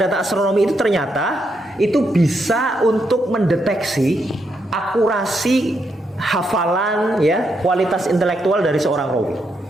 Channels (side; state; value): both; normal; correlation 0.80